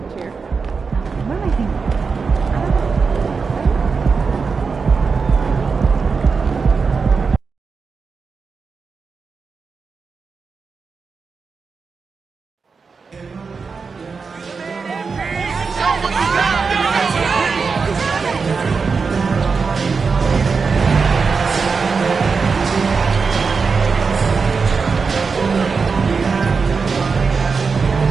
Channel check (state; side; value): quieter; left; 5.0 dB